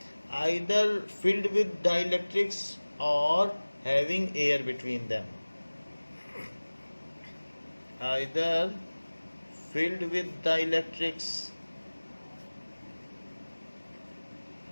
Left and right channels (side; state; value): both; inverted; correlation -1.00